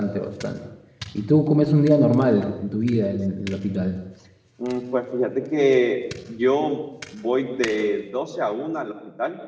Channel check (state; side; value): identical; both; correlation 1.00